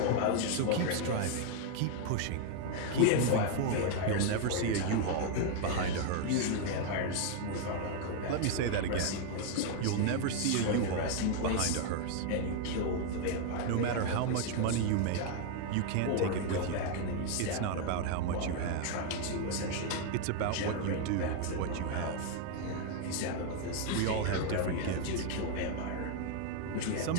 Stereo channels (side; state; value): both; different; correlation 0.00